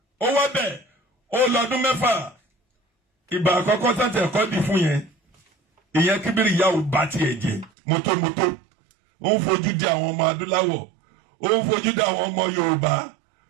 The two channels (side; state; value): left; drops out; at 7.7 s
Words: ó wá bẹ̀ ó lọ́dún mẹ́fà ìgbà àkọ́kọ́ tàǹtì ẹ̀kọ́ dì fún yẹn ìyẹn kíbírì ìyá ò bá tiẹ̀ jẹ́ mọ́tòmọ́tò ó ń fojú di àwọn ọmọ adúláwọ̀ ó ń fojú di àwọn ọmọ Yorùbá